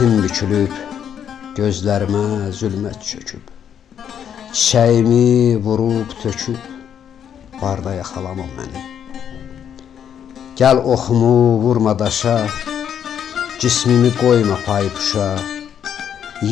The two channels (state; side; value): quieter; right; 8.8 dB